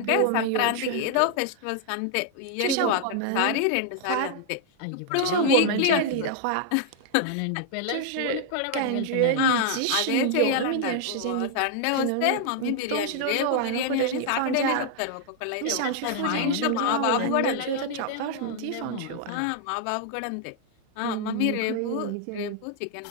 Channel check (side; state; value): both; different; correlation 0.00